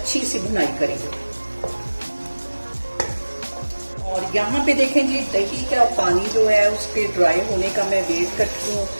सी भुनाई करेंगे। और यहाँ पे देखें जी, दही का पानी जो है उसके ड्राई होने का मैं वेट करती हूँ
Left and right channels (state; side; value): inverted; both; correlation -1.00